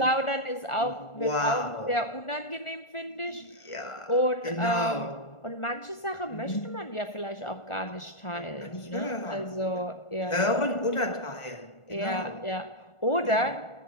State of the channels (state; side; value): late; right; 1.4 ms